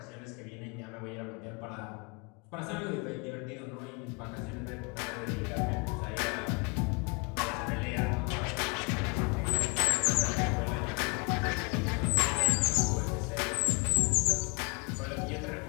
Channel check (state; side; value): quieter; right; 32.3 dB